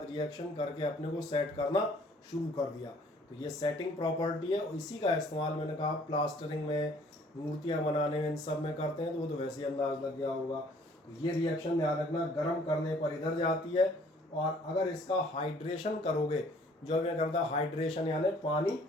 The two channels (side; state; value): both; normal; correlation 0.58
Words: रिएक्शन करके अपने को सेट करना शुरू कर दिया। तो ये सेटिंग प्रॉपर्टी है, इसी का इस्तेमाल मैंने कहा प्लास्टरिंग में, मूर्तियाँ बनाने में, इन सब में करते हैं। तो वो तो वैसे ही अंदाज लग गया होगा। ये रिएक्शन ध्यान रखना, गर्म करने पर इधर जाती है, और अगर इसका हाइड्रेशन करोगे, जो मैं करता हाइड्रेशन यानी पानी